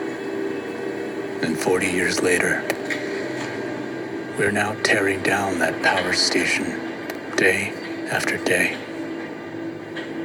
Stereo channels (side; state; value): both; identical; correlation 1.00